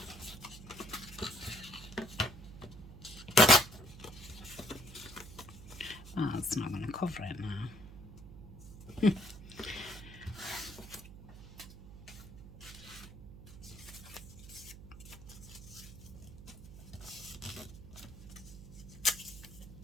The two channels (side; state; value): right; noise; hum, 15 dB below the sound